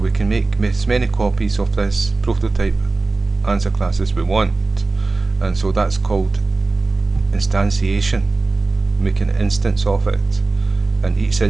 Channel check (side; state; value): left; quieter; 3.6 dB